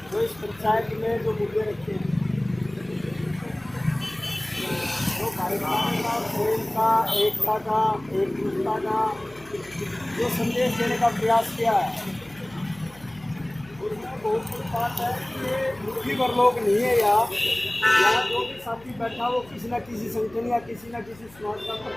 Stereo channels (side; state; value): left; noise; hum, 24 dB below the sound